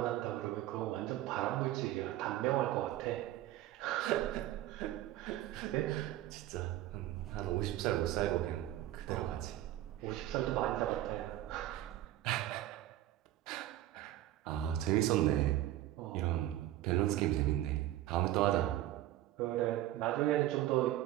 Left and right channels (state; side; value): quieter; left; 14.5 dB